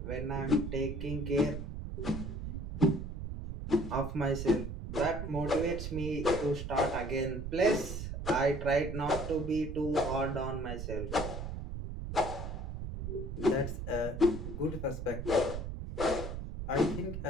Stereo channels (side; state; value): right; noise; rumble, 6 dB below the sound